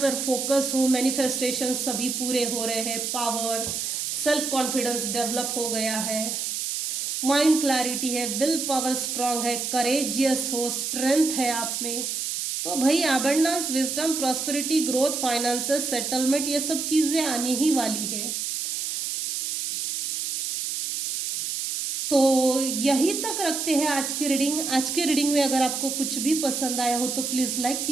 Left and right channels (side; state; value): right; noise; hiss, 3 dB below the sound